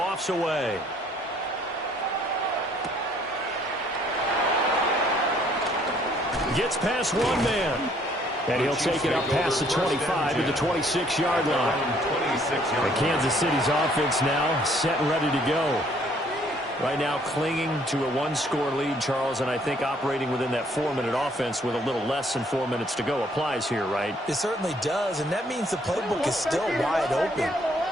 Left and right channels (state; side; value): normal; both; correlation 0.63